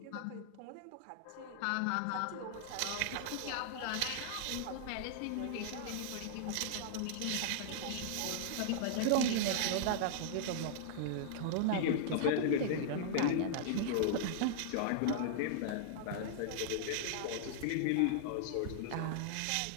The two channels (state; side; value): different; both; correlation -0.01